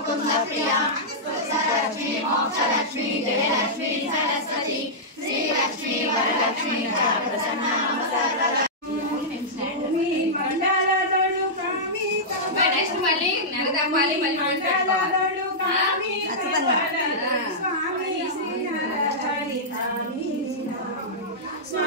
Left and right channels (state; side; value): normal; both; correlation -0.11